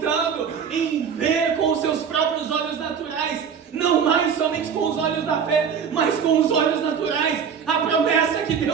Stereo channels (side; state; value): left; quieter; 7.1 dB